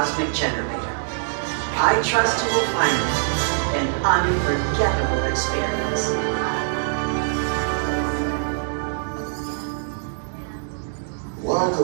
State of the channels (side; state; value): left; silent; digital silence